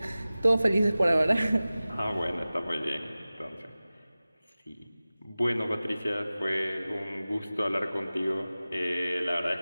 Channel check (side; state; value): both; inverted; correlation -0.97